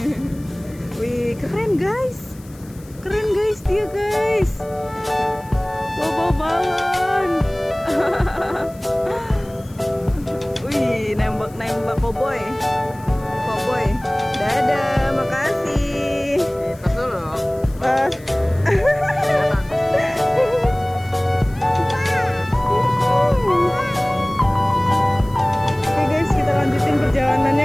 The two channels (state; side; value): noise; left; hiss, 25 dB below the sound